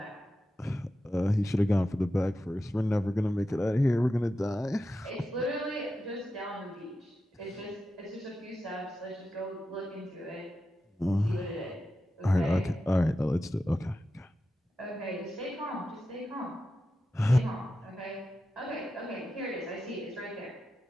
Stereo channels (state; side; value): normal; both; correlation 0.91